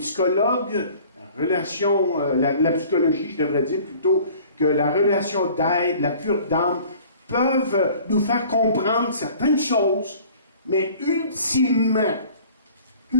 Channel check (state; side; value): inverted; both; correlation -0.49